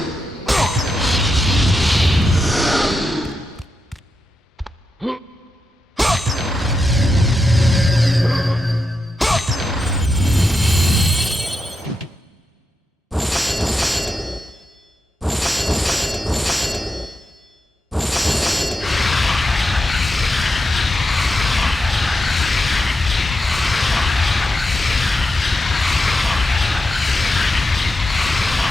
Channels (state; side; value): normal; both; correlation 0.87